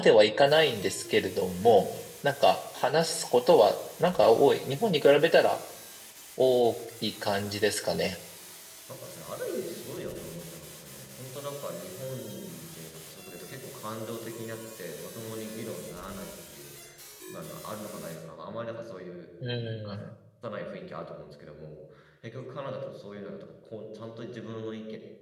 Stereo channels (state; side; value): identical; both; correlation 1.00